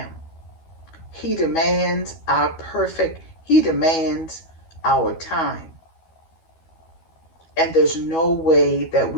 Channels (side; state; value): right; late; 12 ms